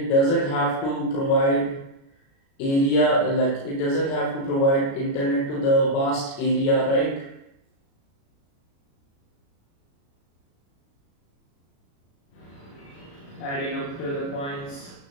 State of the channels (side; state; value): right; late; 36 ms